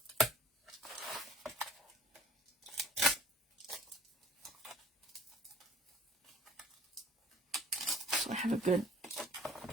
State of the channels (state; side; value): normal; both; correlation 0.51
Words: So I have a good